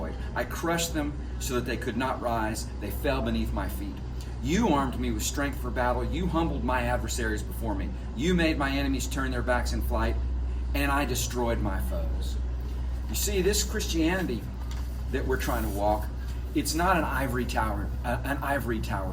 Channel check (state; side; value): identical; both; correlation 1.00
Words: I crushed them so that they could not rise. They fell beneath my feet. You armed me with strength for battle. You humbled my adversaries before me. You made my enemies turn their backs in flight, and I destroyed my foes. You see, this Christianity that we're trying to walk, it's not an ivory tower